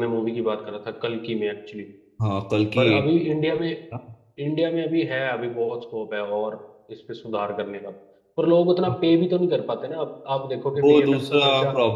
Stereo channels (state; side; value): identical; both; correlation 1.00